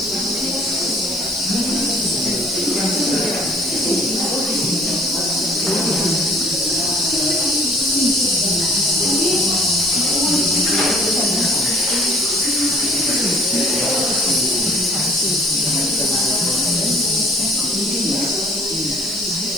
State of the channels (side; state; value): right; noise; hiss, 14 dB below the sound